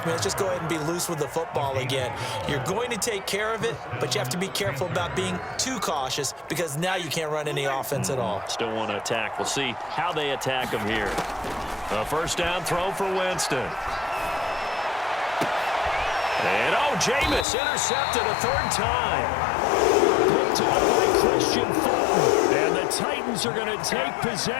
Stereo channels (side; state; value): right; drops out; at 17.4 s